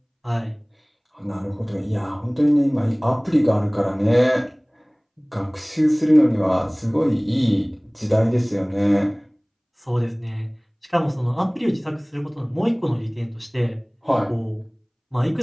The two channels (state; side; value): identical; both; correlation 1.00